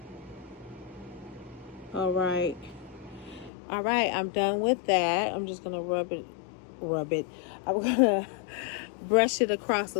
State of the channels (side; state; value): right; drops out; at 3.5 s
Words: All right, I'm done with that. I'm just gonna rub it. I'm gonna brush it across a